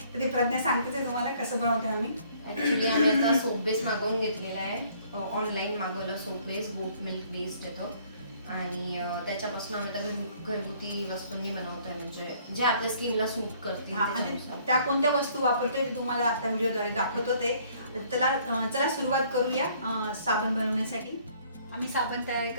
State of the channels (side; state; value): both; inverted; correlation -0.60